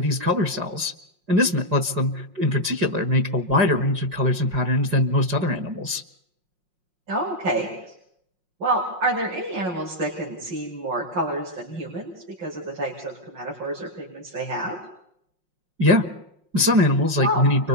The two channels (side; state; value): left; late; 5.5 ms